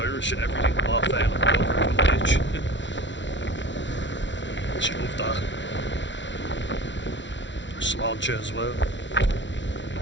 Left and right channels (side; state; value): right; late; 0.54 ms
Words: and everything. Laugh fail and called her a good bitch. She loved that. Sláinte as well.